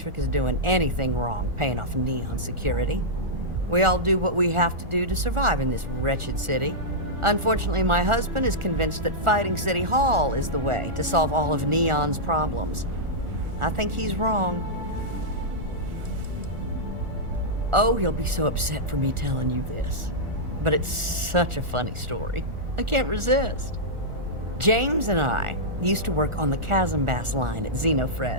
is doing anything wrong paying off Neon security. We all do what we have to do to survive in this wretched city. Unfortunately, my husband is convinced that fighting City Hall is the way to solve all of Neon's problems. I think he's wrong. Oh, he'll be so upset for me telling you this. But it's such a funny story. I can't resist. James and I used to work on the Chasm Bass line at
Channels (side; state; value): left; late; 1.4 ms